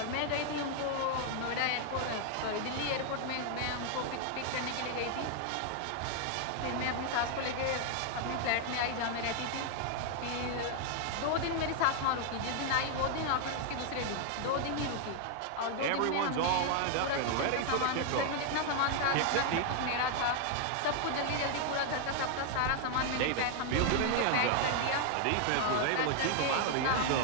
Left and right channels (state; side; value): different; both; correlation 0.00